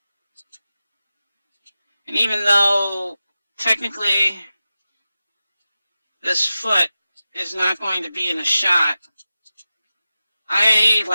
And even though technically this foot is not going to be in a shot, I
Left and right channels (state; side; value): inverted; both; correlation -0.94